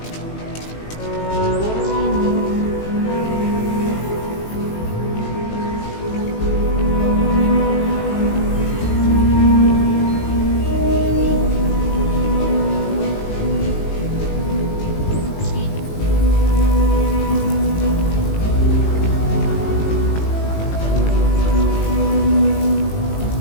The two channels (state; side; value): late; right; 18 ms